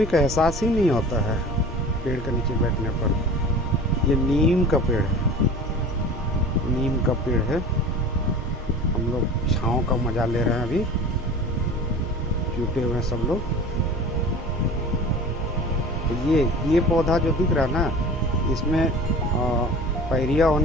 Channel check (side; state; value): both; normal; correlation 0.39